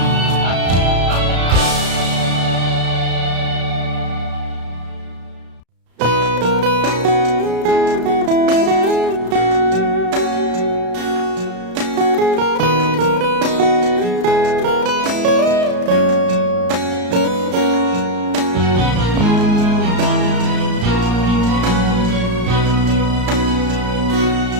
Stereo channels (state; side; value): late; left; 34 ms